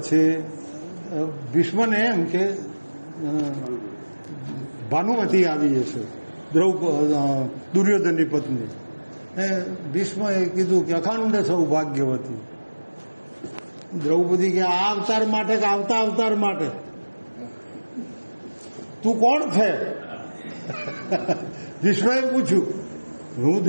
ભીષ્મને એમ કે ભાનુમતી આવી છે, દુર્યોધનની પત્ની. ભીષ્મએ કીધું કે અખંડ સૌભાગ્યવતી. દ્રૌપદી કે આ અવતાર માટે કે આવતા અવતાર માટે? તું કોણ છે? ભીષ્મએ પૂછ્યું. હું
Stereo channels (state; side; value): inverted; both; correlation -1.00